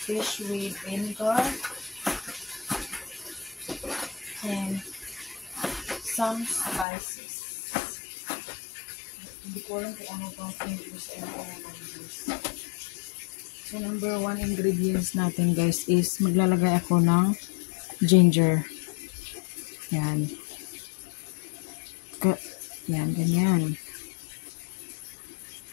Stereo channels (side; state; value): right; drops out; at 6.9 s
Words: with vinegar and some spices. Hindi ko alam kung ano bang English and English. So number one ingredients natin guys is maglalagay ako ng ginger. Yan. Yan, ganyan.